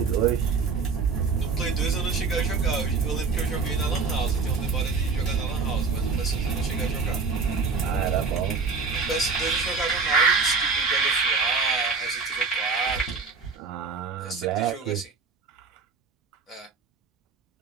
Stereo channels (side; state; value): left; quieter; 4.8 dB